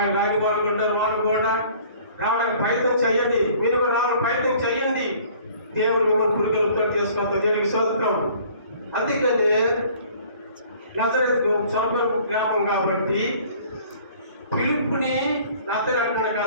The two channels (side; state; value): both; inverted; correlation -0.53